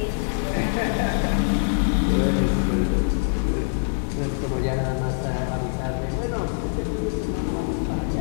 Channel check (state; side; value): silent; right; 63 dB below the other